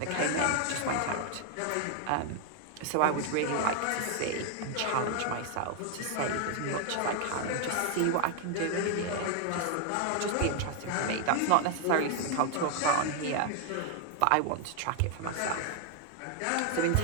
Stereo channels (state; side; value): different; both; correlation 0.00